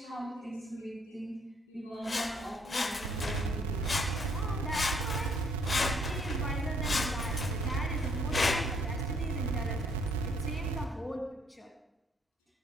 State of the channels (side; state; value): both; normal; correlation 0.66